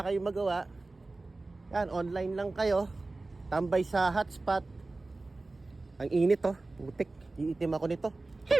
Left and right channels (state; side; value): quieter; left; 3.2 dB